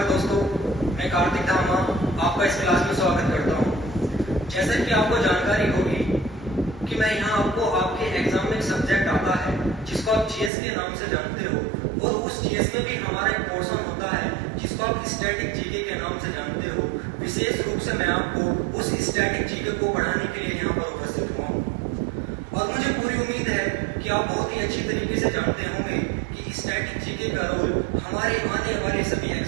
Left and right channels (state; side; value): drops out; left; at 10.5 s